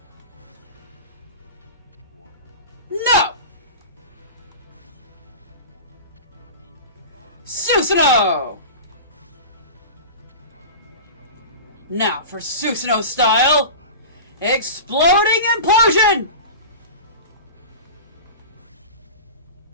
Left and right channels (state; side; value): inverted; both; correlation -0.32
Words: No! Susanoo! Now for Susanoo style. Exploding implosion!